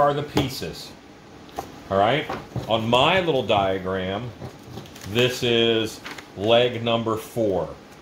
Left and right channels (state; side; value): identical; both; correlation 1.00